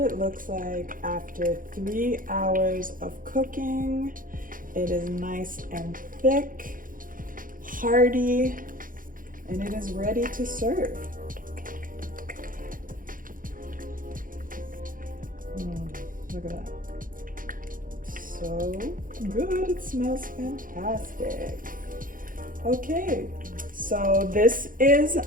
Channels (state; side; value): late; left; 0.40 ms